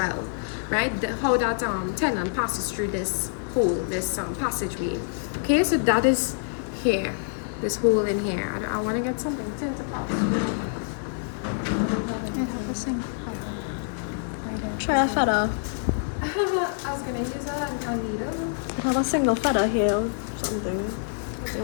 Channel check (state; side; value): silent; right; 59 dB below the other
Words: right? How that tendon passes through this hole, this passageway. Okay, so that is here, this hole in here. I want to get something to pass through. Try a feather. I was gonna use a needle. It have a single feather here or something. You